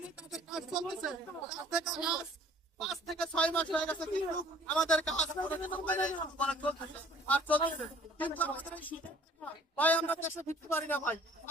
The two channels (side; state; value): both; normal; correlation 0.53